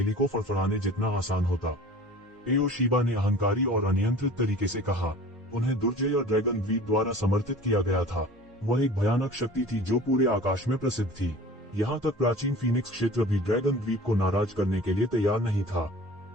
को फड़फड़ाने जितना आसान होता। एओ शिबा ने अहंकारी और अनियंत्रित तरीके से कहा। उन्हें दुर्जय ड्रैगन द्वीप द्वारा समर्थित किया गया था। वह एक भयानक शक्ति थी जो पूरे आकाश में प्रसिद्ध थी। यहाँ तक प्राचीन फीनिक्स क्षेत्र भी ड्रैगन द्वीप को नाराज करने के लिए तैयार नहीं था।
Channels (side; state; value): both; normal; correlation 0.42